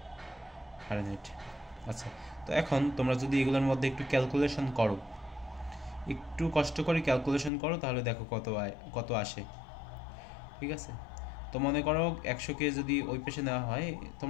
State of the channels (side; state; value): right; drops out; at 7.5 s